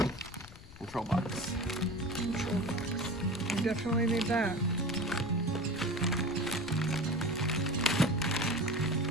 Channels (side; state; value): left; noise; rumble, 17 dB below the sound